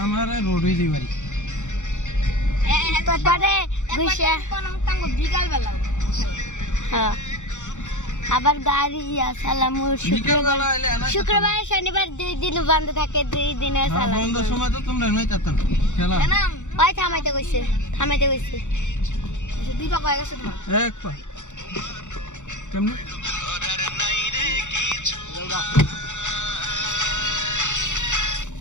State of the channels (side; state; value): right; late; 0.85 ms